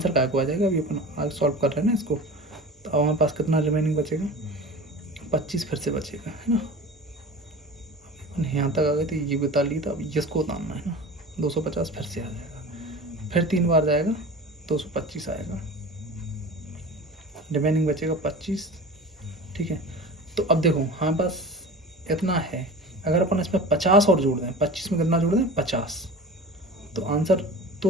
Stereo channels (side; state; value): both; normal; correlation 0.35